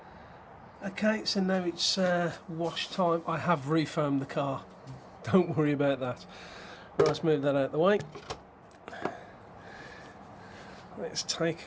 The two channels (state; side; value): identical; both; correlation 1.00